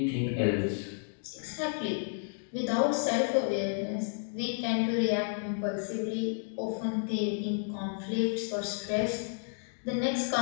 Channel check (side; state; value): right; silent; digital silence